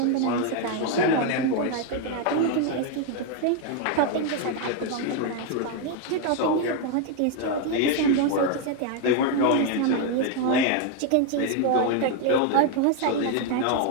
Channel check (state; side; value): different; both; correlation 0.00